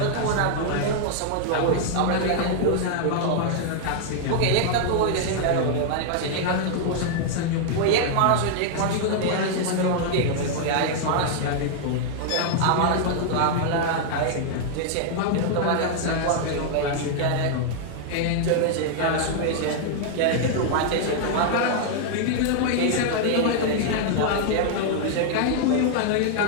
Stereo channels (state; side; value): different; both; correlation -0.01